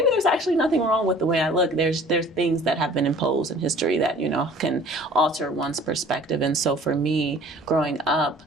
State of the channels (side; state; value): both; normal; correlation 0.49